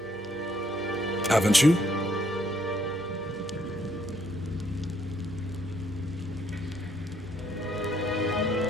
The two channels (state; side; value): normal; both; correlation 0.69